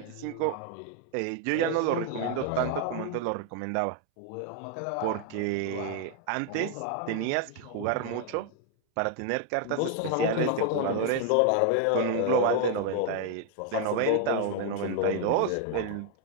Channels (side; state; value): both; different; correlation 0.01